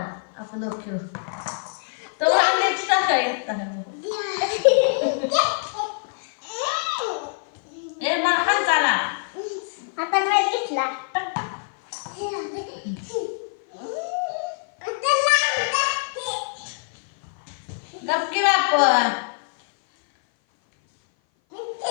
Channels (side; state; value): right; silent; 57 dB below the other